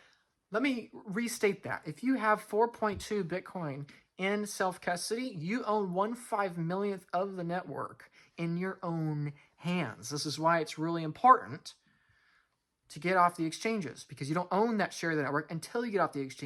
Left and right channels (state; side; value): identical; both; correlation 1.00